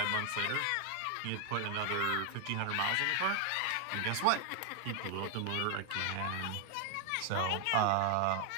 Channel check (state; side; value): different; both; correlation 0.00